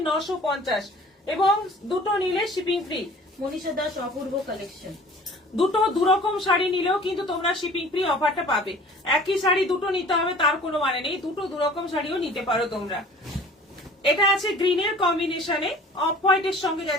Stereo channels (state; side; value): normal; both; correlation 0.48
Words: 950 এবং দুটো নিলে শিপিং ফ্রি। মনীষা দাস, অপূর্ব কালেকশন। দুটো দুরকম শাড়ি নিলেও কিন্তু তোমরা শিপিং ফ্রি অফারটা পাবে। একই শাড়ি দুটো নিতে হবে তার কোনো মানে নেই, দুটো দুরকম শাড়িও নিতে পারো তোমরা। এটা আছে গ্রিনের কম্বিনেশনে, অফ হোয়াইটের সঙ্গে